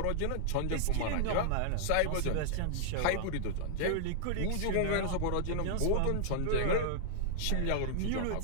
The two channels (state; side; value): different; both; correlation -0.01